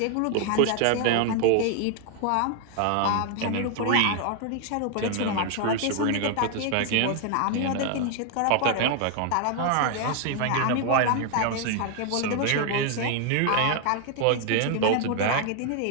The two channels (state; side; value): different; both; correlation 0.00